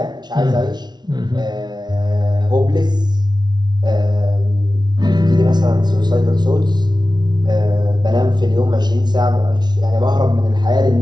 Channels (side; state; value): left; late; 0.20 ms